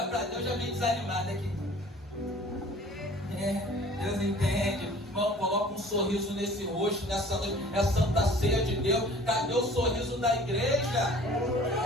para Deus, já vem desanimado aqui. Deus entende. Irmão, coloca um sorriso nesse rosto, nessa noite. É a Santa Ceia de Deus. Cadê o sorriso da igreja?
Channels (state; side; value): normal; both; correlation 0.49